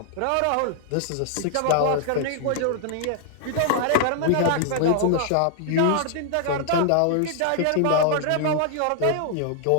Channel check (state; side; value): different; both; correlation 0.00